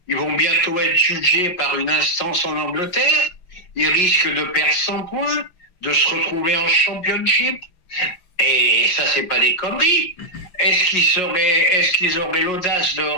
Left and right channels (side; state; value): right; late; 5.4 ms